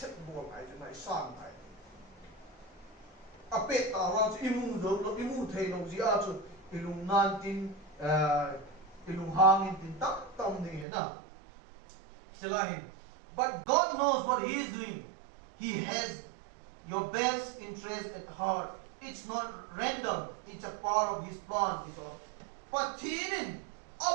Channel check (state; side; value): drops out; left; at 10.9 s